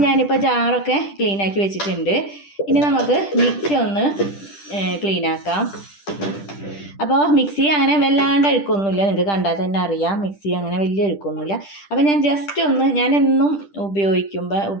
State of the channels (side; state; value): right; late; 10 ms